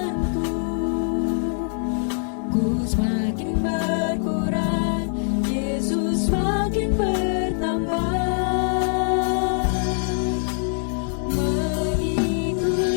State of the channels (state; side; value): silent; right; 59 dB below the other